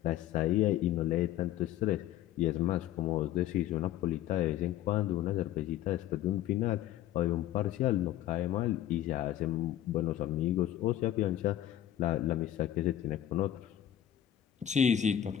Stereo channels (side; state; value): right; quieter; 11.9 dB